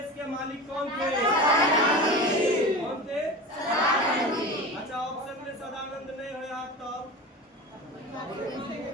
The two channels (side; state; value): both; normal; correlation 0.30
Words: के मालिक कौन थे? कौन थे? अच्छा ऑप्शन में सदानंद नहीं हो याद,